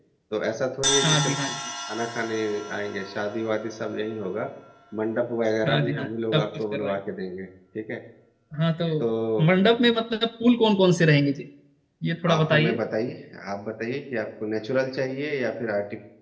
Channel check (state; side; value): identical; both; correlation 1.00